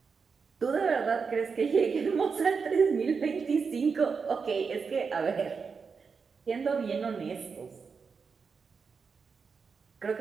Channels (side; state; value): left; quieter; 5.4 dB